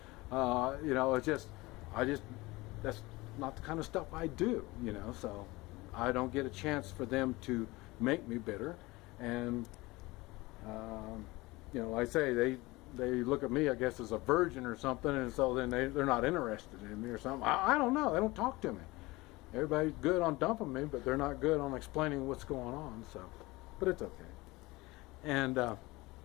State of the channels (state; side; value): quieter; right; 21.6 dB